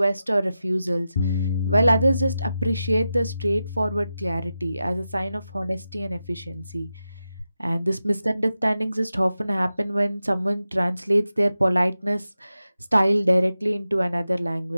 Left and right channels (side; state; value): both; inverted; correlation -0.91